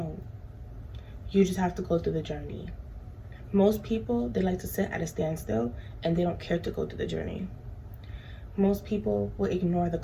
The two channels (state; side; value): identical; both; correlation 1.00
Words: You just have to go through the journey. Most people, they like to sit at a standstill and they don't care to go through the journey. Most people will ignore the